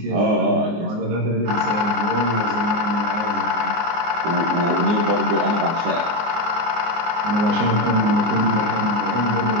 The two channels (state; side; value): late; left; 24 ms